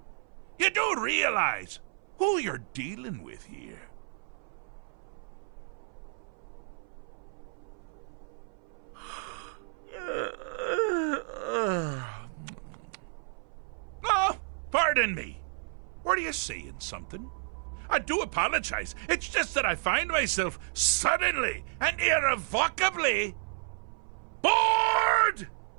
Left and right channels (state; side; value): silent; left; 57 dB below the other